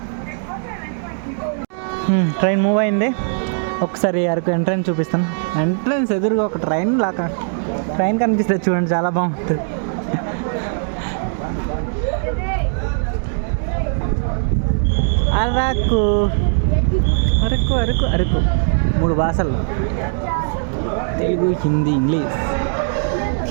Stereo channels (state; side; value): silent; left; 66 dB below the other